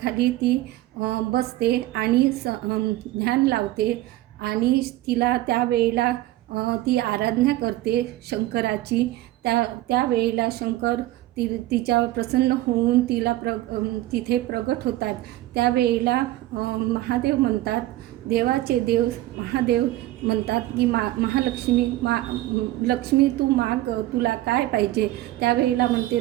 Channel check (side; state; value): left; quieter; 16.1 dB